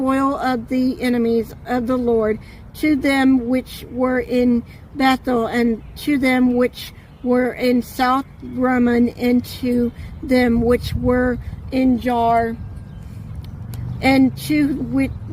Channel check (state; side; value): identical; both; correlation 1.00